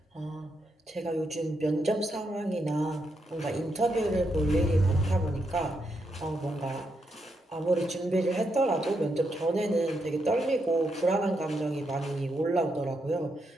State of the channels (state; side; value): normal; both; correlation 0.81